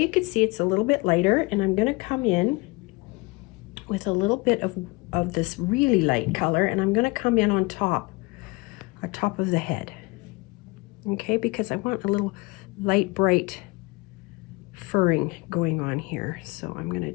can see it's a little bit lighter, and I'm going to come in with a little bit of this really light color, and I'm going to come in on top of the head. Okay, because I want a little light, bright furring going on here. So I'm going to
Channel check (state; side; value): quieter; right; 25.7 dB